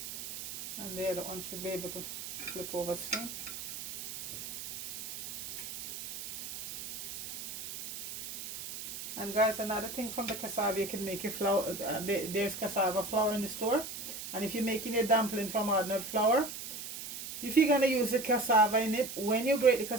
And the other one should be able to flip over soon. And guys, another thing from the cassava, you can make your flour. There's cassava flour in the store. And if you're making your dumpling from ordinary flour, if you're going to use the cassava in it, when you grate the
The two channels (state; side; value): noise; right; hiss, 8 dB below the sound